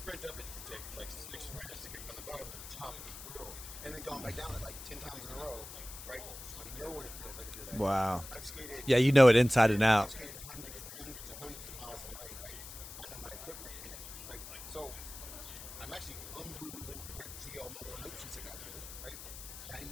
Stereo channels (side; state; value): left; noise; hiss, 12 dB below the sound